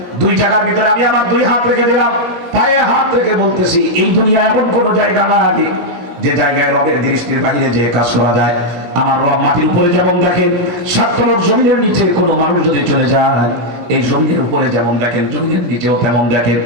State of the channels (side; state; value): left; late; 17 ms